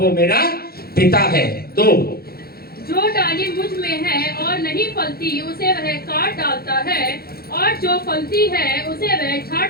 मेरा पिता है। तो जो डाली मुझ में है और नहीं फलती उसे वह काट डालता है, और जो फलती है उसे वह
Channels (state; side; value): late; right; 0.45 ms